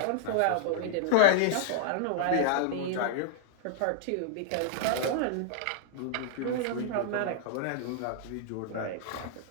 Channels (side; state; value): both; different; correlation -0.01